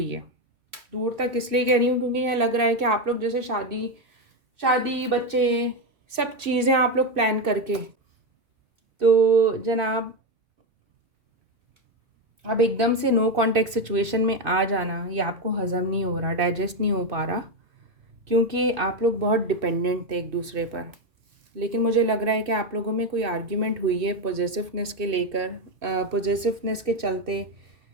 है। दूर तक इसलिए कह रही हूँ क्योंकि ये लग रहा है कि आप लोग जैसे शादी शादी बच्चे सब चीज़ें आप लोग प्लान करके, तो जनाब अब एकदम से नो कॉन्टेक्ट सिचुएशन में आ जाना, ये आपको हज़म नहीं हो रहा, डाइजेस्ट नहीं हो पा रहा, क्योंकि आप लोग बहुत डिपेंडेंट थे एक दूसरे पर। लेकिन मुझे लग रहा है कि आप लोगों में कोई आर्ग्यूमेंट हुई है पॉजेसिवनेस के लेकर, पॉजेसिवनेस के चलते,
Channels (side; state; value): left; late; 2.6 ms